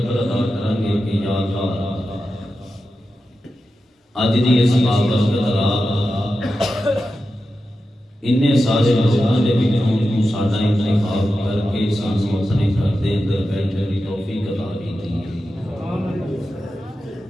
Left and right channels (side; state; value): both; normal; correlation 0.91